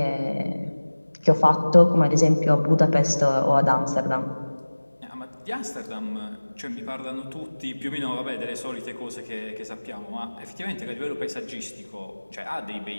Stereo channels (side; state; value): both; inverted; correlation -1.00